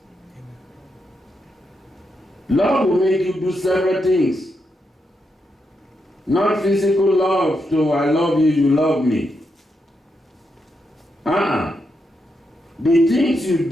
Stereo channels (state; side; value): normal; both; correlation 0.83